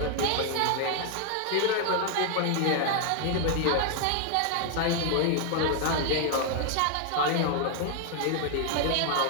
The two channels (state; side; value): different; both; correlation 0.00